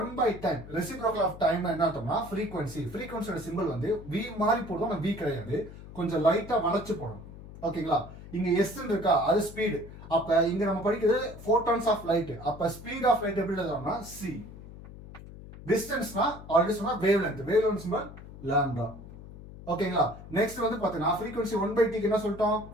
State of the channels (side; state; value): left; noise; hum, 15 dB below the sound